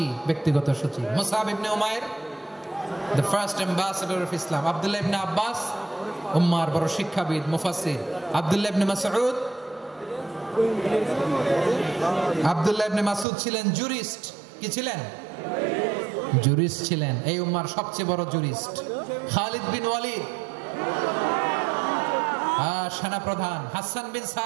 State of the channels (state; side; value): drops out; left; at 13.2 s